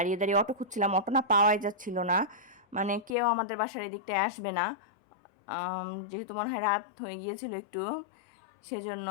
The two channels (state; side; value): drops out; right; at 3.2 s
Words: দাঁড়িয়ে অটো খুঁজছিলাম, অটো না পাওয়াই যাচ্ছিল না, মানে কেউ আমাদের বাসার এদিকটায় আসবে না, যেহেতু মনে হয় রাত হয়ে গিয়েছিল একটু, সেজন্য।